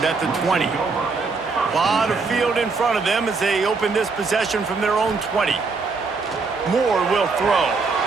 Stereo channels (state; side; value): quieter; left; 4.4 dB